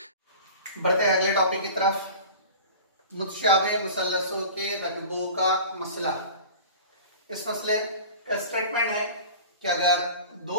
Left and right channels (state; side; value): inverted; both; correlation -0.38